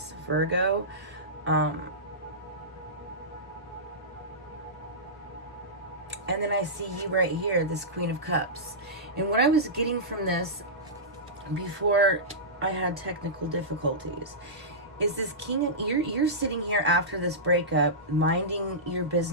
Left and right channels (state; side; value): normal; both; correlation -0.16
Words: Virgo. And then I see you right here, this Queen of Cups. And what I was getting from this before I had technical difficulties is this king. You're sitting here after this breakup, minding your